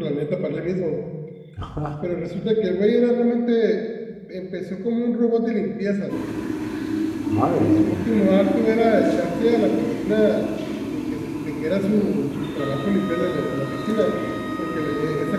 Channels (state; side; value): identical; both; correlation 1.00